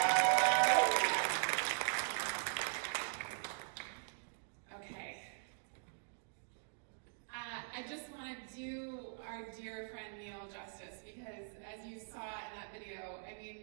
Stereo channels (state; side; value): silent; left; digital silence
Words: Okay. I just want to do our dear friend Neil justice because as you saw in that video, I